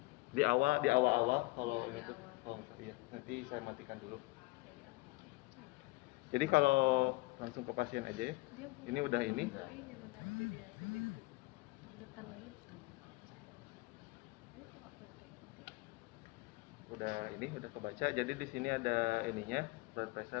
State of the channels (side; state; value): right; quieter; 23.7 dB